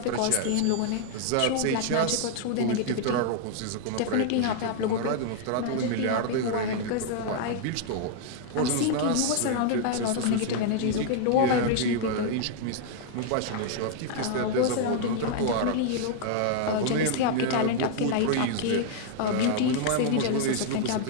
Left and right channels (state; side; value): different; both; correlation 0.00